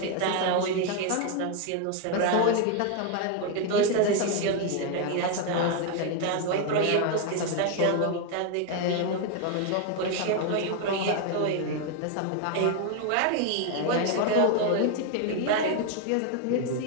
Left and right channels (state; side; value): different; both; correlation 0.01